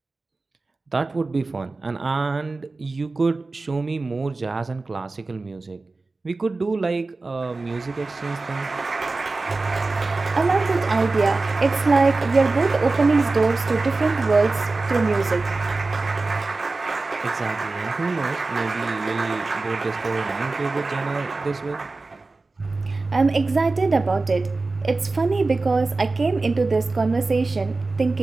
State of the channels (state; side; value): quieter; left; 3.5 dB